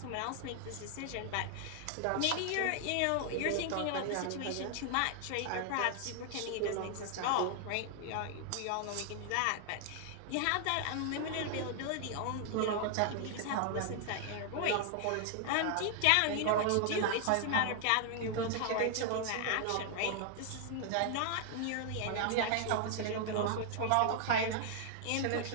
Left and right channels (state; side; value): different; both; correlation 0.00